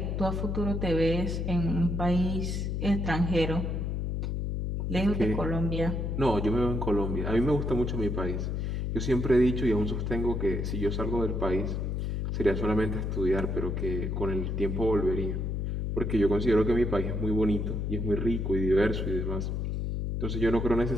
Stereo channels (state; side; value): noise; left; hum, 1 dB below the sound